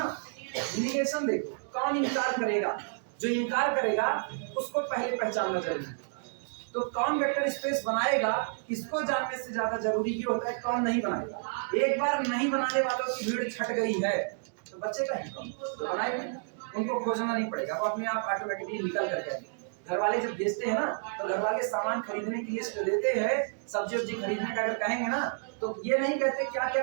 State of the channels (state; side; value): silent; left; digital silence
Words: निगेशन देखो, कौन इनकार करेगा, जो इनकार करेगा उसको पहले पहचानना जरूरी है। तो कौन वेक्टर स्पेस बनाएगा, इसको जानने से ज्यादा जरूरी ये होता है कौन नहीं बनाएगा। एक बार नहीं बनाने वालों की भीड़ छट गई है तो बचेगा ही कौन, तो बनाएगा, उनको खोजना नहीं पड़ेगा, वो अपने आप ऑटोमेटिकली निकल करते हैं। घर वाले जब भेजते हैं ना, तो घर वाले सामान खरीदने की लिस्ट देते हैं, सब्जी वब्जी खरीदने का अगर कहेंगे ना, तो ये नहीं कहते क्या